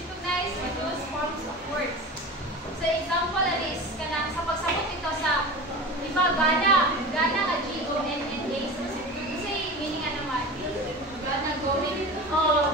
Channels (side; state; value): both; normal; correlation 0.32